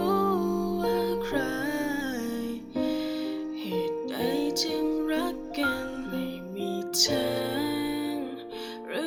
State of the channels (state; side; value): identical; both; correlation 1.00